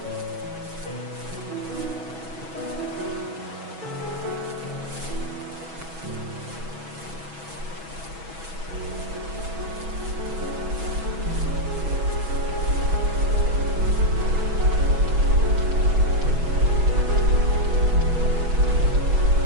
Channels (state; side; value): late; left; 6.2 ms